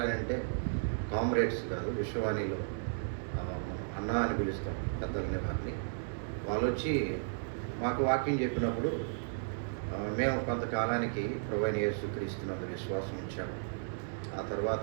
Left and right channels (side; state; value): left; silent; digital silence